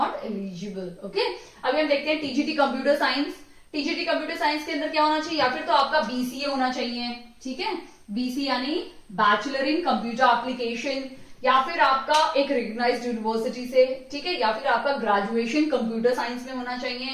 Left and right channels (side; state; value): both; identical; correlation 1.00